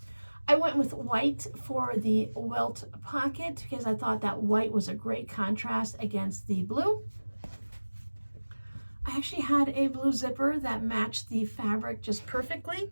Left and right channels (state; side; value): inverted; both; correlation -1.00